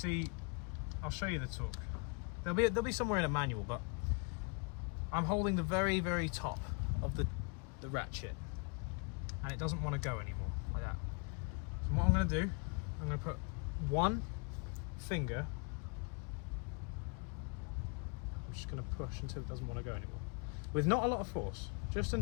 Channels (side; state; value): right; quieter; 30.8 dB